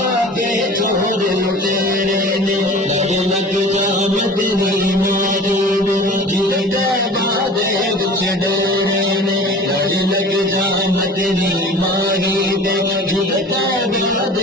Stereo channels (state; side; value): normal; both; correlation 0.41